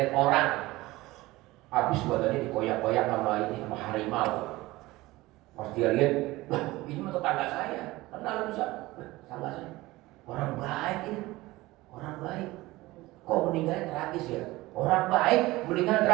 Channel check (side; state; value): left; quieter; 19.3 dB